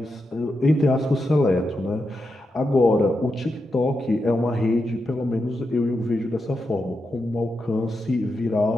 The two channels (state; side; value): normal; both; correlation 0.87